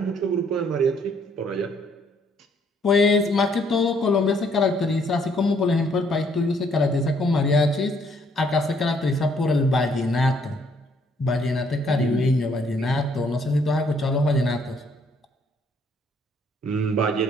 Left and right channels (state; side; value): normal; both; correlation 0.66